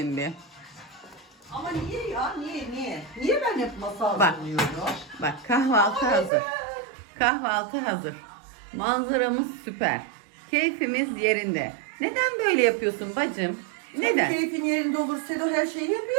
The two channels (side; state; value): left; drops out; at 6.3 s